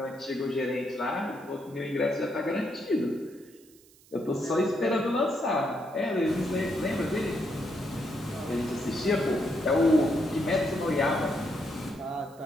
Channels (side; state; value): right; noise; hiss, 27 dB below the sound